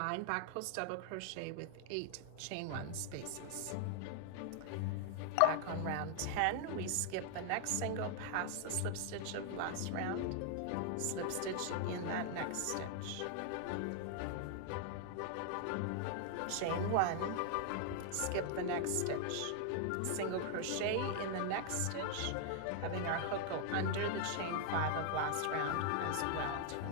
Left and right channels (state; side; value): different; both; correlation 0.00